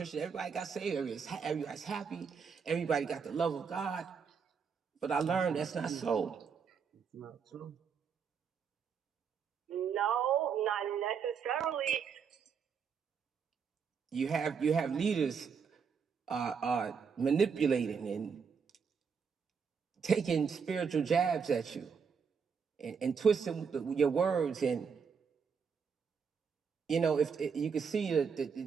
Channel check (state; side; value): quieter; left; 6.2 dB